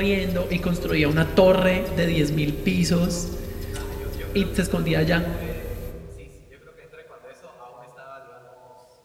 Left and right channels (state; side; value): identical; both; correlation 1.00